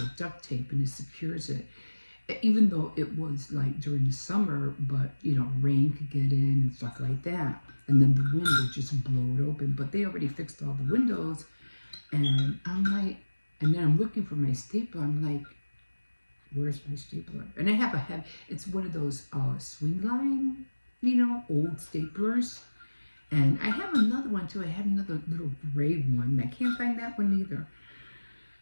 with duct tape and it secures it. Even though it was like during the summer, but, rain could get in and stuff like that. And then the wind would just blow it open. But they already fixed all the windows. And I'm like, and then I'm looking for my stapler. I'm like, where's my stapler? And I have it's one of those swing line, old staplers. And I have another one too. I have another little gray one. I can't find that one either.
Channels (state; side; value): inverted; both; correlation -1.00